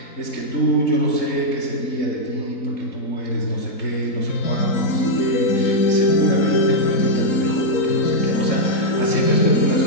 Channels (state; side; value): late; right; 3.9 ms